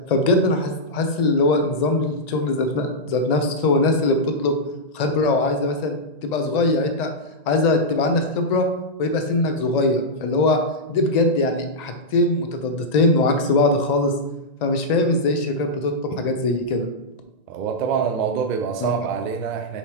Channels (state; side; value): late; right; 1.9 ms